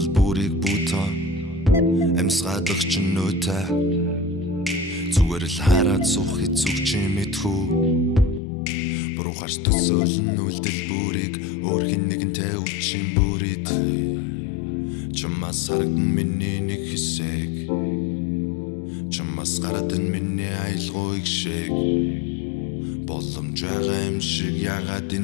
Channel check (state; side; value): drops out; right; at 8.4 s